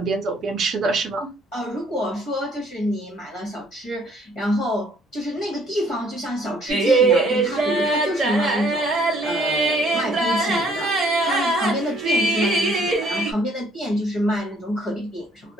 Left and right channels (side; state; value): both; normal; correlation 0.62